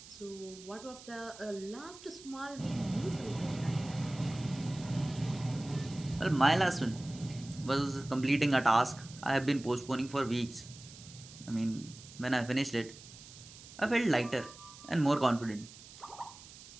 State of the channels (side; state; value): right; noise; hiss, 18 dB below the sound